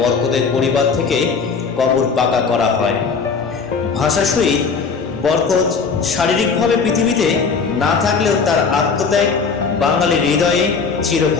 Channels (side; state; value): right; quieter; 5.2 dB